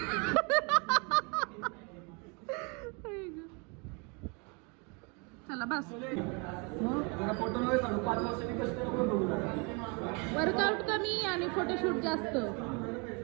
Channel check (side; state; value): left; quieter; 32.5 dB